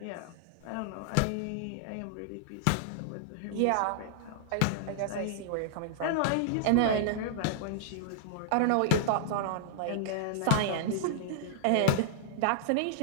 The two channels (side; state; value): both; different; correlation -0.01